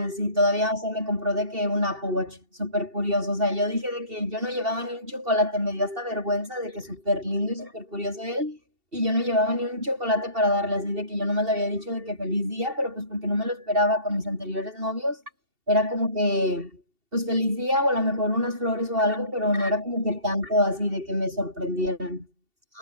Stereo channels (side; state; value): left; late; 2.7 ms